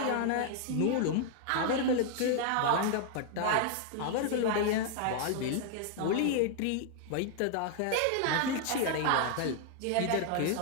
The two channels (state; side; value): different; both; correlation 0.00